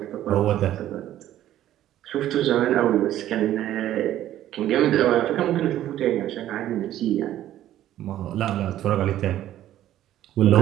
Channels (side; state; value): left; quieter; 12.7 dB